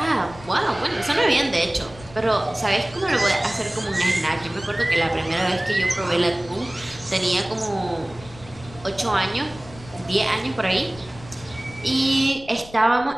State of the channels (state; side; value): noise; left; rumble, 19 dB below the sound